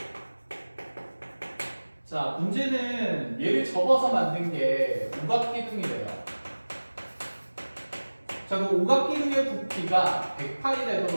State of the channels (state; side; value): inverted; both; correlation -1.00